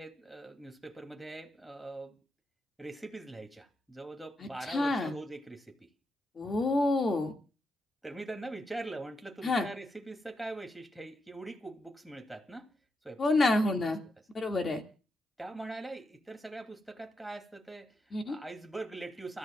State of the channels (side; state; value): both; normal; correlation 0.84